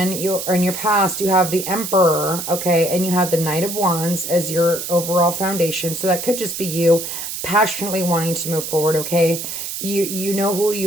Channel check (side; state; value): right; noise; hiss, 6 dB below the sound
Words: or in your past, you have the Emperor, okay? And you have the Knight of Wands as your overall foundation. So that could just be you passionately wanting to move forward, okay? You know who